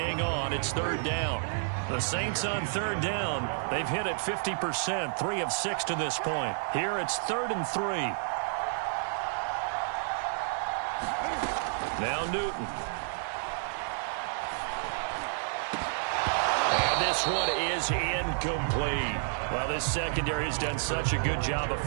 on. It's 3rd down. The Saints on 3rd down. They've hit it 50%, 3 of 6 to this point. Here it's 3rd and 3. Now Newton. And this this one is incomplete. Well, this secondary has done such a good job of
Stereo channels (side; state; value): left; silent; digital silence